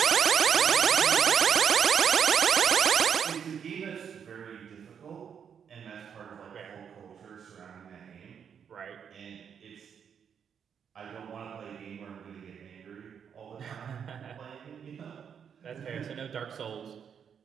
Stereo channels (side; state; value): left; quieter; 7.6 dB